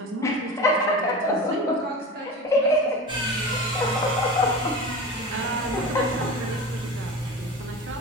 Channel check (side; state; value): both; normal; correlation 0.31